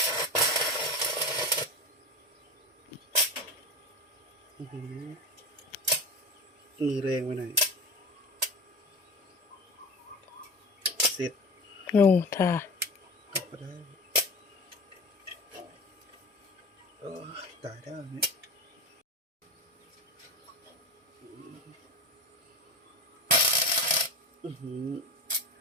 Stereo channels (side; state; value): both; normal; correlation 0.29